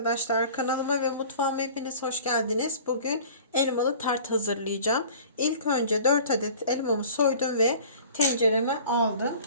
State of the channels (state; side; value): inverted; both; correlation -0.45